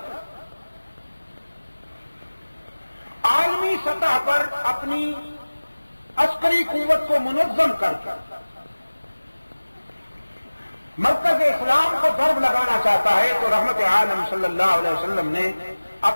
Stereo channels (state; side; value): inverted; both; correlation -1.00